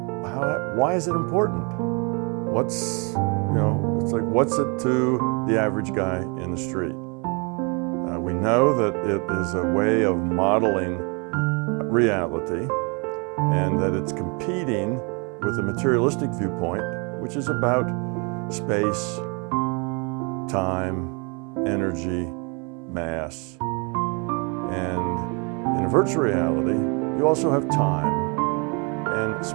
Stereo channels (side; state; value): left; quieter; 32.9 dB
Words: why is it important? It's like, what's it to the average guy in the street? We know that it is a way of modeling reality and that it's competing with a materialistic viewpoint, which is about space, time, energy, mass. And in a virtual reality, you also have time, and